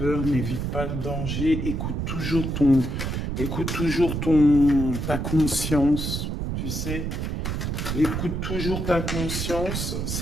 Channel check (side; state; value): right; noise; rumble, 2 dB below the sound